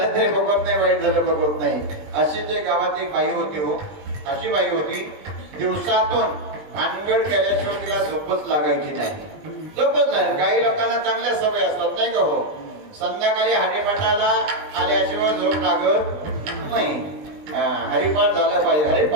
तरी बघत नाही, वाईट झालं बघत नाही. अशी जे गावात बाई होती, हो अशी बाई होती, दिवसातून भानगड केल्याशिवाय तिला झोपच लागायची नाही, झोपच नाही. काही लोकांना चांगल्या सवय असतात नाही का, हो संध्याकाळी हरिपाठाला आल्याशिवाय झोप लागत नाही. हरिपाठ झाला पाहिजे,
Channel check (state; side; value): late; left; 20 ms